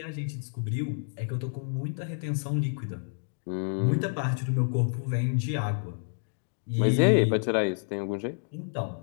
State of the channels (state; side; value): silent; right; digital silence